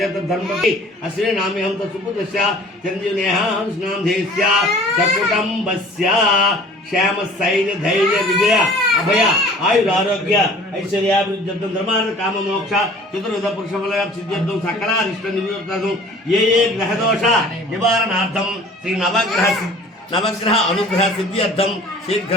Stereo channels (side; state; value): both; normal; correlation 0.48